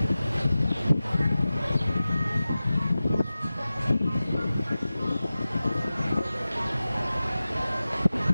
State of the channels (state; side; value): inverted; both; correlation -0.96